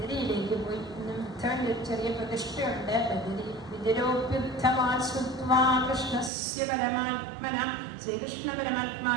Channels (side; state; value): left; drops out; at 6.3 s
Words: പോയി. ഇന്നും ഉദ്ധവന്റെ ഒരു ചെറിയ പ്രതിഷ്ഠയുണ്ട് ബദരി. വിദുരോപ്യുദ്ധമാ കൃഷ്ണസ്യ പരമാത്മന, ശ്രീകൃഷ്ണ